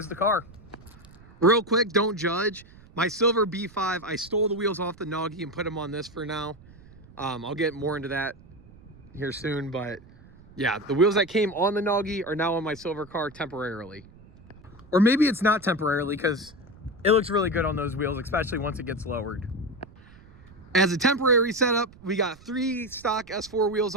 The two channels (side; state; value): right; noise; rumble, 23 dB below the sound